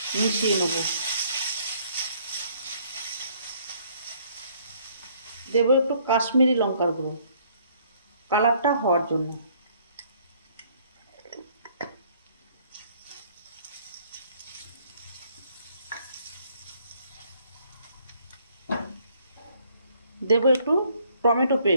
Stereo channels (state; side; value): inverted; both; correlation -0.63